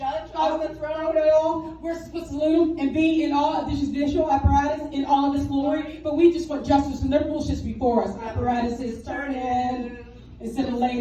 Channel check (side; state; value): both; identical; correlation 1.00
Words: on the throne. At all. We're supposed to salute him and be in all of this judicial apparatus in all of its glory, but we just want justice and their bullshit's before us. Apparatus is turning. It's